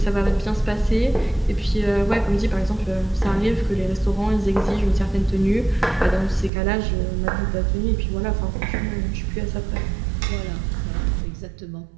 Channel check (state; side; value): drops out; left; at 6.5 s